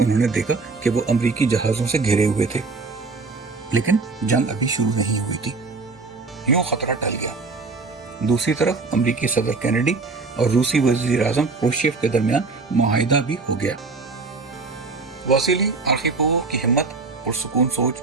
نے دیکھا کہ وہ امریکی جہازوں سے گھرے ہوئے تھے، لیکن جنگ ابھی شروع نہیں ہوئی تھی۔ یوں خطرہ ٹل گیا۔ دوسری طرف امریکی صدر کینیڈی اور روسی وزیر اعظم کروشچیف کے درمیان معاہدہ بھی ہو گیا۔ واسیلی آرخیپووو کی ہمت، پرسکون سوچ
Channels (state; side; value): quieter; left; 4.0 dB